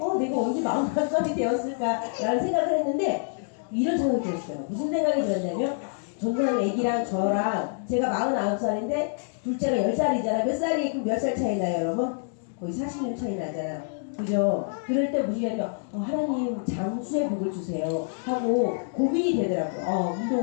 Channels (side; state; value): right; silent; digital silence